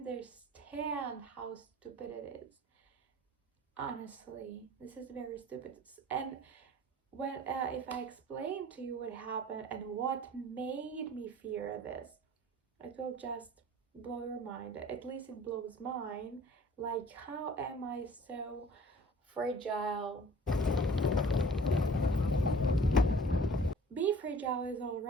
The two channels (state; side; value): normal; both; correlation 0.48